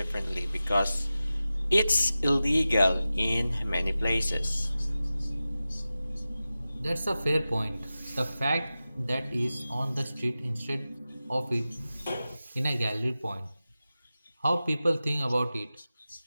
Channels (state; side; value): inverted; both; correlation -0.94